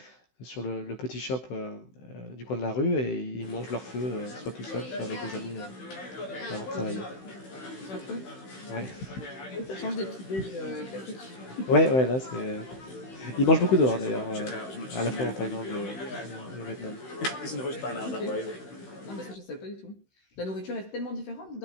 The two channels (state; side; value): late; right; 16 ms